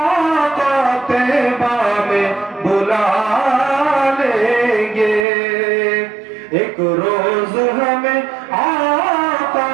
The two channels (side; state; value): left; drops out; at 5.2 s